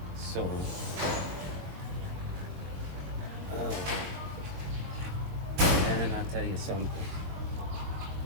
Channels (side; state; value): left; late; 22 ms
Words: so and I'll tell you something.